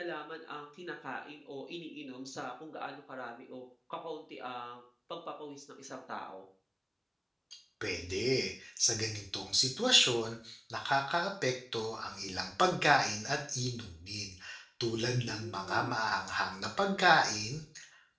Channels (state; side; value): identical; both; correlation 1.00